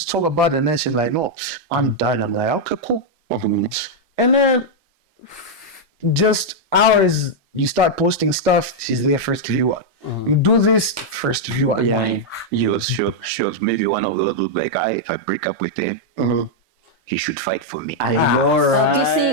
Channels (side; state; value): both; normal; correlation -0.03